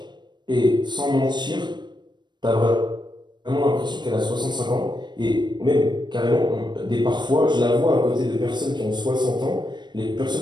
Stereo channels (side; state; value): left; late; 0.22 ms